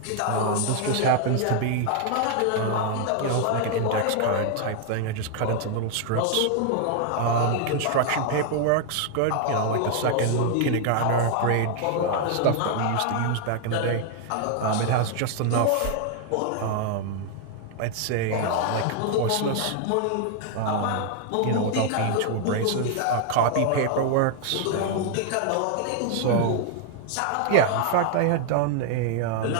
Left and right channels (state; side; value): different; both; correlation 0.00